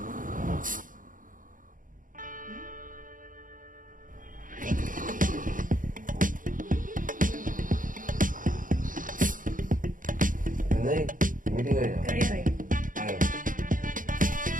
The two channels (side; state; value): left; late; 0.39 ms